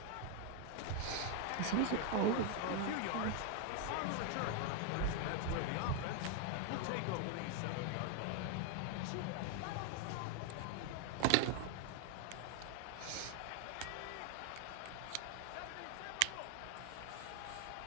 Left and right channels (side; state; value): both; different; correlation 0.01